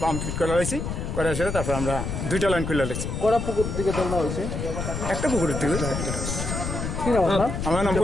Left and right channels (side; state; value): left; noise; rumble, 4 dB below the sound